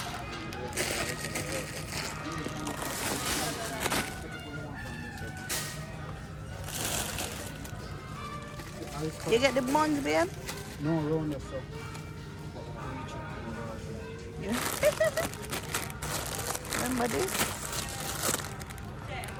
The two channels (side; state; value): both; identical; correlation 1.00